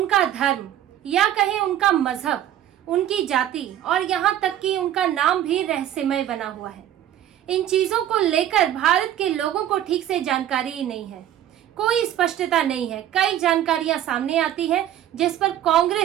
धर्म या कहें उनका मजहब, उनकी जाति और यहाँ तक कि उनका नाम भी रहस्यमय बना हुआ है। इन चीजों को लेकर भारत के लोगों को ठीक से जानकारी ही नहीं है, कोई स्पष्टता नहीं है। कई जानकारियां सामने आती है जिस पर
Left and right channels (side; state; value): left; quieter; 11.6 dB